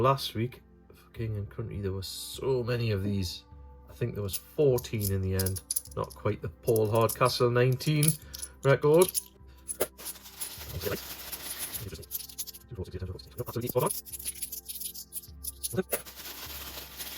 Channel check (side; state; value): both; identical; correlation 1.00